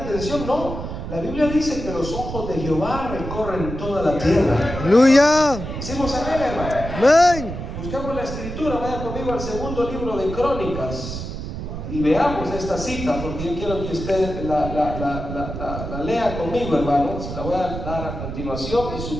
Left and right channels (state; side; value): noise; right; rumble, 7 dB below the sound